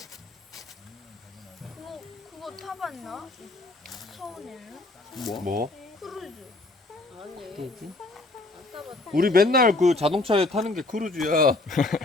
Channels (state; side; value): quieter; right; 3.1 dB